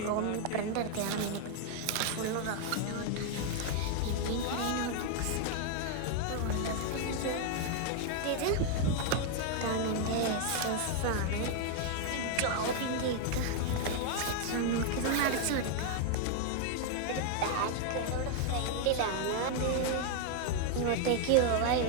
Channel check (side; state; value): both; different; correlation 0.00